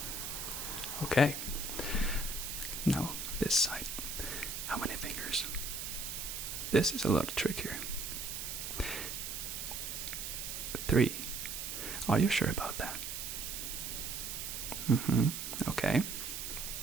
Okay. Now this side. How many fingers? This is a lot trickier. 3. Are you sure about that? Okay.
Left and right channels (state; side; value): noise; right; hiss, 5 dB below the sound